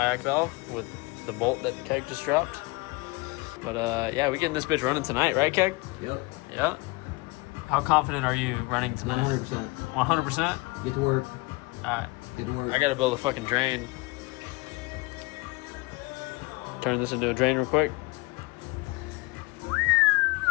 valve with the bolt that Keg just dropped. But yeah, we getting this bitch running tonight, right, Keg? Yep. Yeah. How confident are you running tonight? 100%. 100%? Get to work. Alright. Get to work. I gotta build a fucking drain. Turn this into a drain real quick.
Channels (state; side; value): quieter; right; 25.1 dB